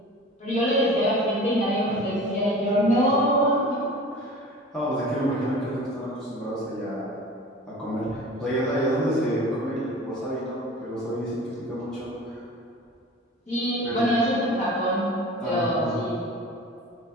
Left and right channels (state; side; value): normal; both; correlation 0.39